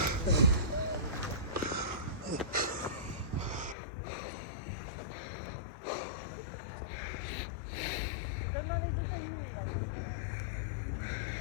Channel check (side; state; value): right; drops out; at 3.8 s